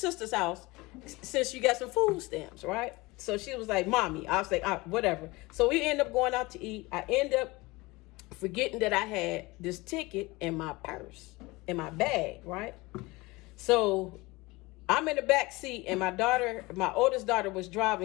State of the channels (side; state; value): right; quieter; 22.6 dB